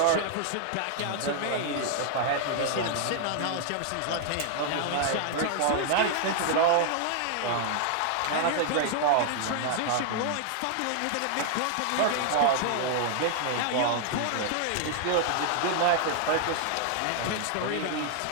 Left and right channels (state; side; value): different; both; correlation 0.00